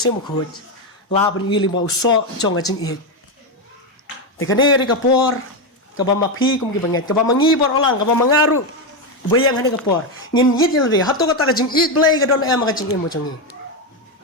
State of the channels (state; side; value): normal; both; correlation 0.09